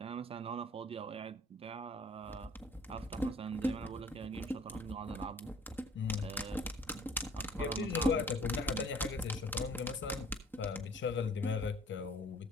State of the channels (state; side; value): normal; both; correlation 0.53